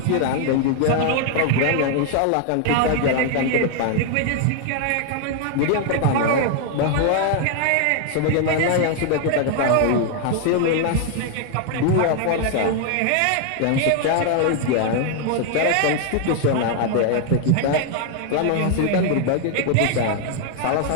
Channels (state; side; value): different; both; correlation 0.00